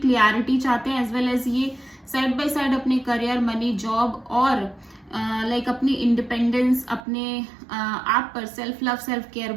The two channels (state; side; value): drops out; left; at 7.0 s